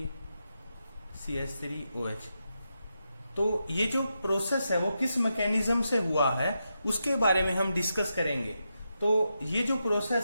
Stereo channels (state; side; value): inverted; both; correlation -0.86